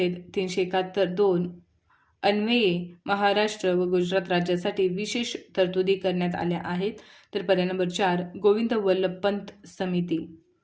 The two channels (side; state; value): both; identical; correlation 1.00